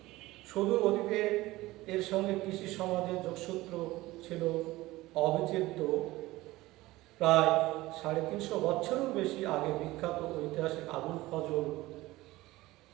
সুদূর অতীতে এর সঙ্গে কৃষি সমাজের যোগসূত্র ছিল অবিচ্ছেদ্য। প্রায় 350 বছরেরও বেশি আগে বিখ্যাত ঐতিহাসিক আবুল ফজল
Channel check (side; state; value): left; quieter; 18.5 dB